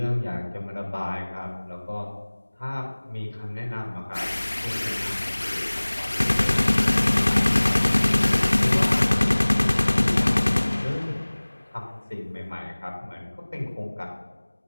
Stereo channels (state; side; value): inverted; both; correlation -1.00